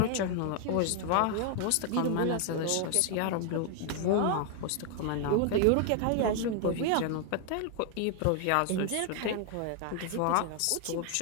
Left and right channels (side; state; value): both; different; correlation 0.00